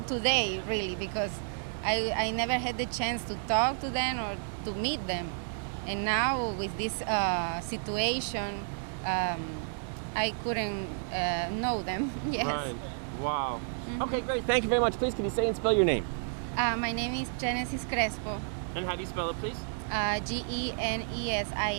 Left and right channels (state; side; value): silent; left; digital silence